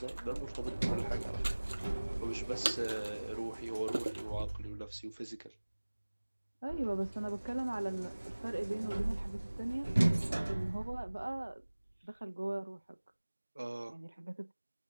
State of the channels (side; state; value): both; inverted; correlation -1.00